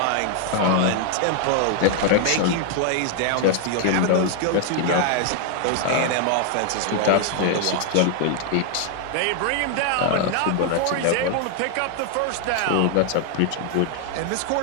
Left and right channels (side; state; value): both; different; correlation 0.00